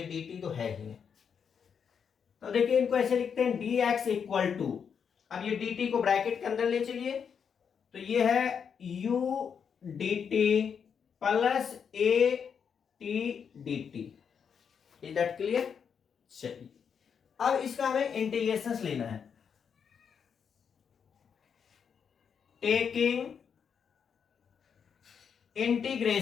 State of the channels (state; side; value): quieter; right; 7.0 dB